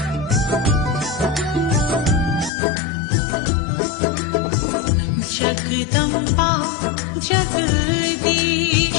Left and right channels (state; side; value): drops out; right; at 2.5 s